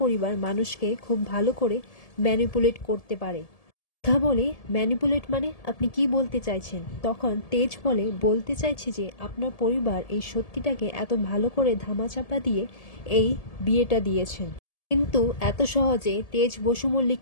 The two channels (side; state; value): right; late; 1.7 ms